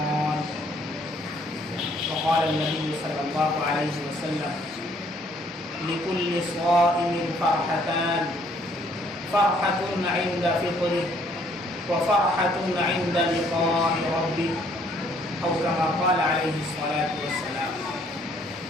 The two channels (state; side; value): normal; both; correlation 0.64